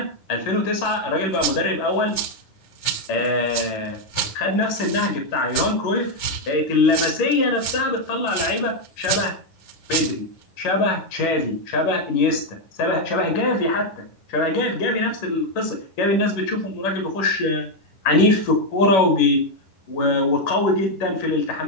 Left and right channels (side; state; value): right; late; 11 ms